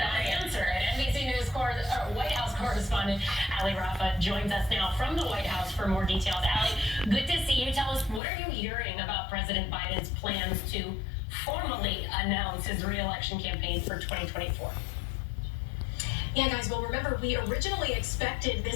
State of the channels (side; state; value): right; drops out; at 8.2 s